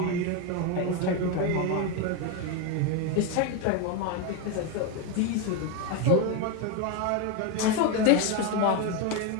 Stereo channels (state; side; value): different; both; correlation 0.02